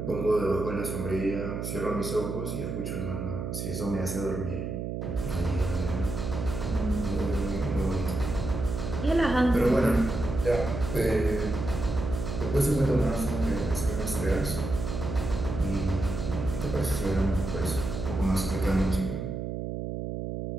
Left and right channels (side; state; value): right; noise; hum, 4 dB below the sound